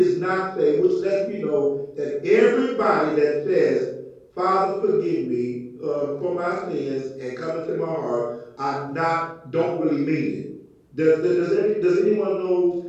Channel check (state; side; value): identical; both; correlation 1.00